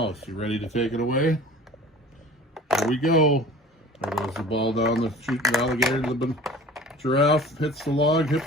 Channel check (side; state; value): both; normal; correlation 0.43